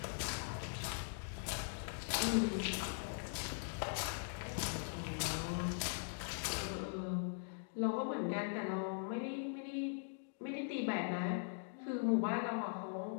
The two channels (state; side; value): silent; right; digital silence